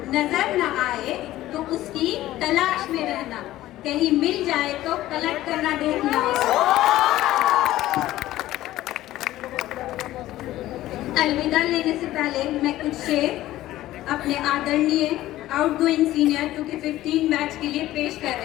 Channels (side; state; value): right; quieter; 15.1 dB